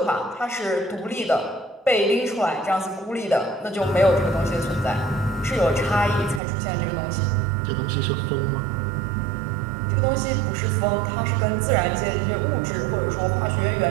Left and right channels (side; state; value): left; drops out; at 6.4 s